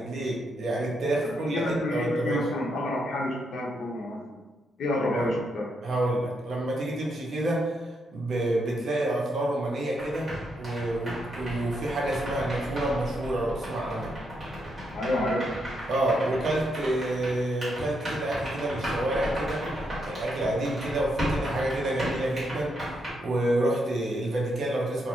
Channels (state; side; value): normal; both; correlation 0.79